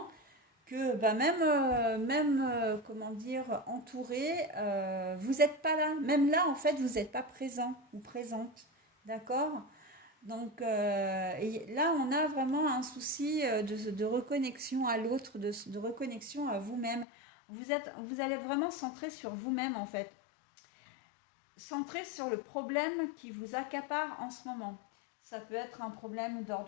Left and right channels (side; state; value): right; drops out; at 17.1 s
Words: que même comment dire, entouré, vous n'êtes pas là. Même là, en fait, vous n'êtes pas présent ou présente. D'accord? Donc et là, on a vraiment un souci de reconnexion à l'autre, de reconnexion à vous-même. Vous allez être vraiment centré sur vous-même, en fait, centré sur le problème qui vous accapare en ce moment. Ça peut être un problème